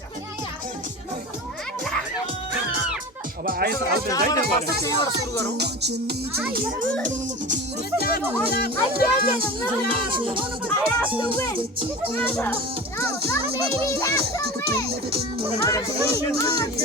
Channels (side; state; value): both; normal; correlation 0.32